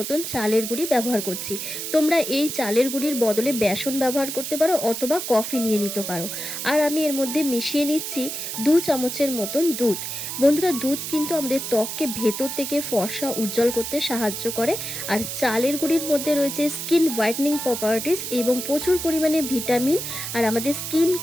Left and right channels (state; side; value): noise; right; hiss, 5 dB below the sound